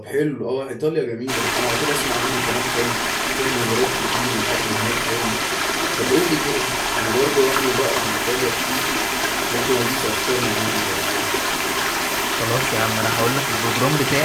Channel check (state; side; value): identical; both; correlation 1.00